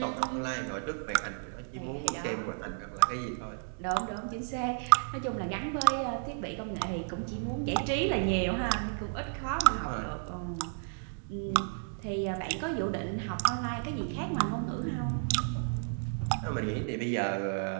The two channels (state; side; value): silent; left; digital silence